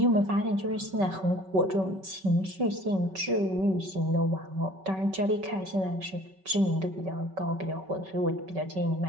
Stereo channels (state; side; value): late; left; 5.3 ms